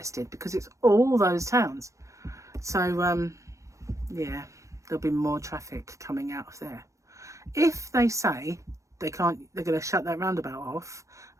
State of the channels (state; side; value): late; left; 0.15 ms